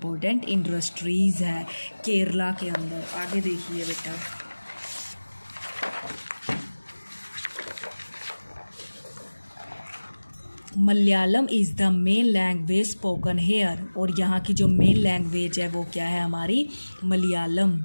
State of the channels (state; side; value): inverted; both; correlation -1.00